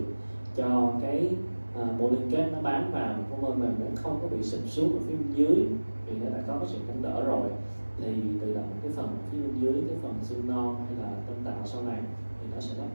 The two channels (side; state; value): both; inverted; correlation -1.00